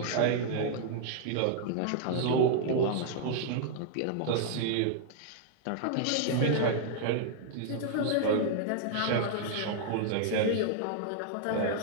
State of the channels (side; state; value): both; different; correlation -0.01